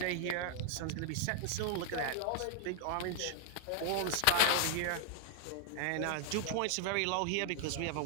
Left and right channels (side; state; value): both; different; correlation 0.00